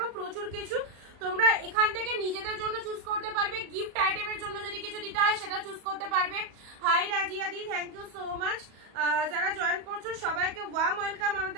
প্রচুর কিছু তোমরা এখান থেকে নিজেদের জন্য চুজ করতে পারবে, গিফট আইটেমের জন্য যদি কিছু দিতে হয় সেটা চুজ করতে পারবে। হাই রাজিয়া দি, থ্যাংক ইউ সো মাচ। যারা জয়েন করছো সবাইকে ওয়ার্ম ওয়েলকাম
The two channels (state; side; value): late; left; 38 ms